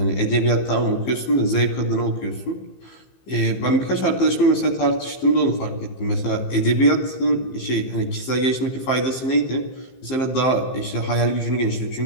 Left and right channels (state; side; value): late; right; 15 ms